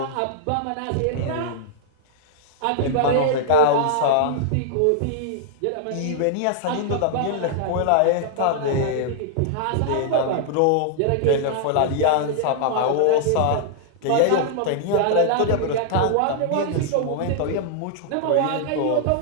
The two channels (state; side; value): different; both; correlation -0.01